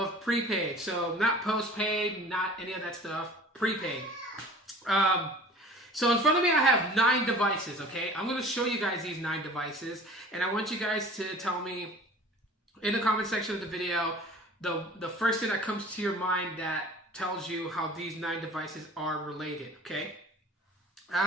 prepaid. So not postpaid, not any of that stuff, prepaid. So in front of me, I have 9 devices, okay? I'm going to show you guys these 9 devices, and I want you guys to tell me in the comment section of the video the first thing that comes to your mind that tells you how these 9 devices are related, okay?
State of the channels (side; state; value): both; normal; correlation 0.45